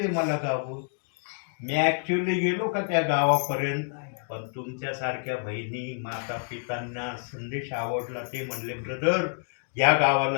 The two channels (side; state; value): right; silent; 59 dB below the other